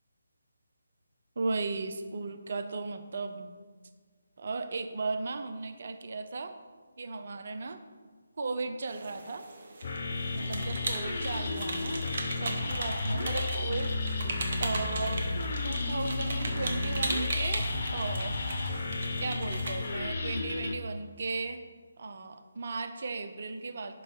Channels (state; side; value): inverted; both; correlation -0.83